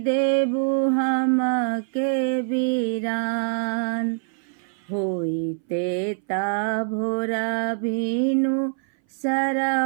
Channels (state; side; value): silent; left; 59 dB below the other